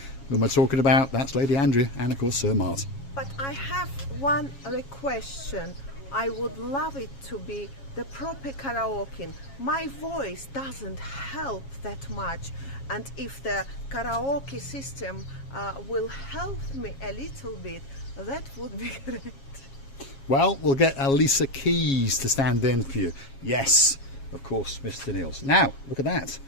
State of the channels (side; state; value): right; late; 7.3 ms